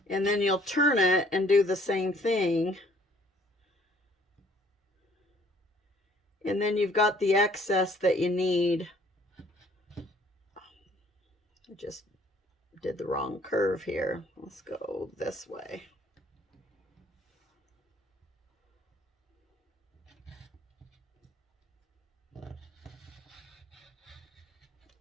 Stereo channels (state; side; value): normal; both; correlation 0.59